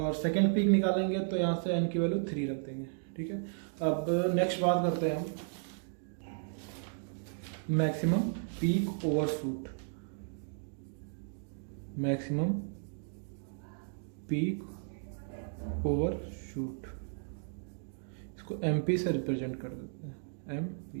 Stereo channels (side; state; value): left; silent; digital silence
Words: सेकंड पीक निकालेंगे तो यहाँ से एन की वैल्यू 3 रख देंगे, ठीक है। अब नेक्स्ट बात करते हैं हम maximum peak overshoot, maximum peak overshoot, इसको एमपी से रिप्रेजेंट कर देते हैं,